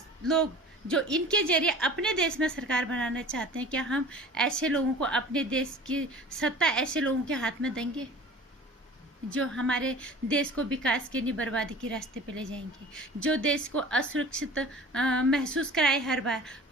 जो इनके जरिए अपने देश में सरकार बनाना चाहते हैं, क्या हम ऐसे लोगों को, अपने देश की सत्ता ऐसे लोगों के हाथ में देंगे जो हमारे देश को विकास के नहीं बर्बादी के रास्ते पे ले जाएंगे, जो देश को असुरक्षित महसूस कराए। हर बार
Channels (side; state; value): both; normal; correlation 0.43